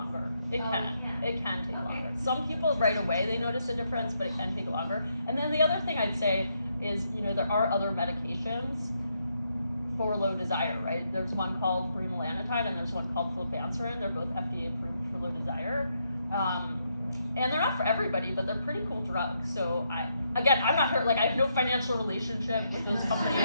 It Oh, can. it It can take Okay. longer. Some people right away they notice a difference, but it can take longer. And then the other thing I'd say is, you know, there are other medications for low desire, right? There's one called bremelanotide and there's one called flibanserin. They're both FDA approved for low desire. And they're not for everybody, but they're pretty cool drugs. So I'm not hurt, like I have no financial relationship with those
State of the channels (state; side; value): inverted; both; correlation -0.78